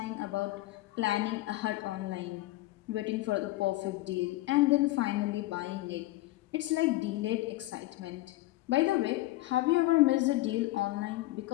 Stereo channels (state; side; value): quieter; right; 18.0 dB